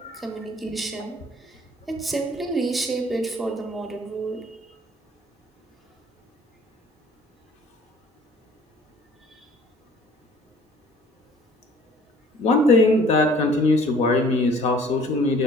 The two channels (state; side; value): normal; both; correlation 0.54